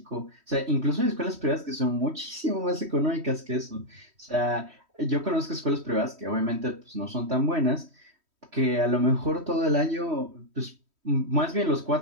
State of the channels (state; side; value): late; left; 3.1 ms